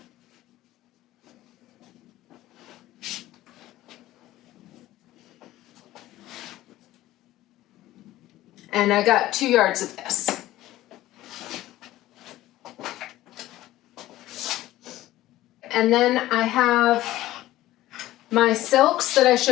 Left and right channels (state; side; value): quieter; right; 15.5 dB